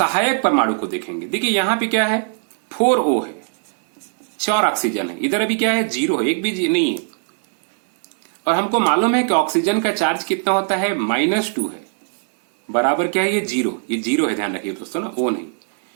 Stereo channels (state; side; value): silent; left; 65 dB below the other